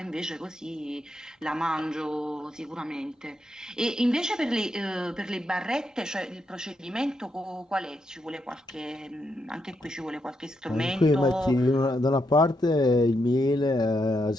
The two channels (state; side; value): normal; both; correlation 0.81